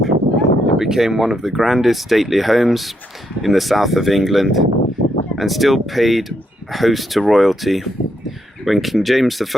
became one of the grandest stately homes in the south of England and still paid host to royalty. When King James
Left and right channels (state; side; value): normal; both; correlation 0.78